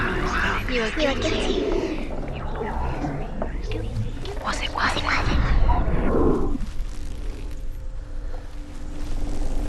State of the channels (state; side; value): identical; both; correlation 1.00